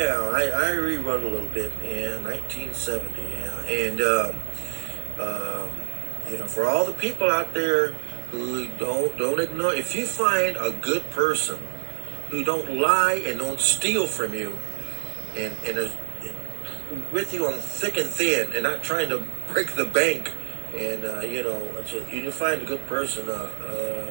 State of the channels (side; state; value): left; silent; 61 dB below the other